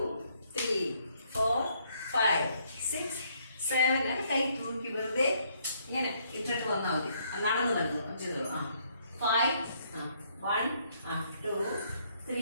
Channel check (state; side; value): inverted; both; correlation -0.69